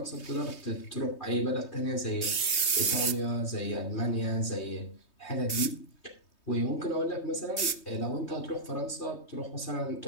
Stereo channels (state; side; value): late; right; 3.2 ms